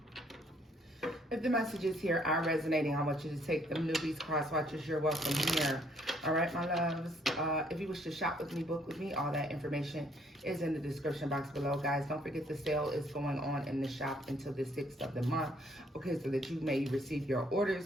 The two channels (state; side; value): normal; both; correlation 0.65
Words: If the messages here are resonating, I want you to take them. Newbies, cross watchers, you're welcome here. All right, my loves. If you wish to shop with me, book with me, all that information is in the description box below, guys. Don't forget the sale is going on in the shop until the 6th of the month. Okay, so that you may receive your